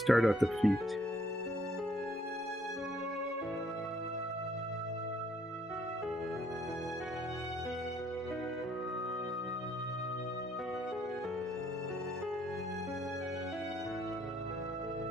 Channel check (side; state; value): both; normal; correlation 0.66